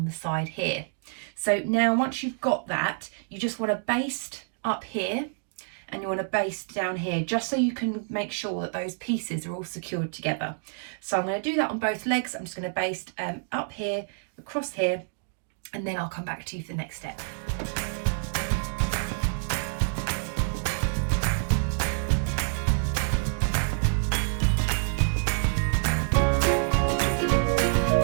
the side here. So now once you've got that, you just want to baste up here and you want to baste down here, just so you can make sure that those pieces are all secured together. So I'm going to do that on both legs. I'm just going to baste up here, across here, and then I'll come back to you for the next step.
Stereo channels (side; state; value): left; silent; digital silence